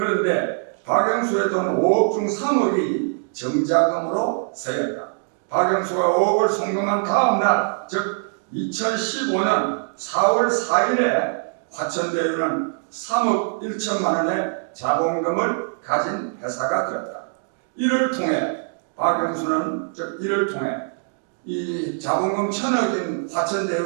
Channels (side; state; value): left; silent; digital silence